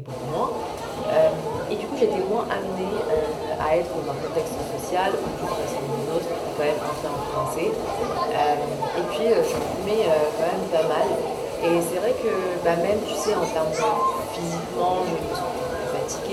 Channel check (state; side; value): identical; both; correlation 1.00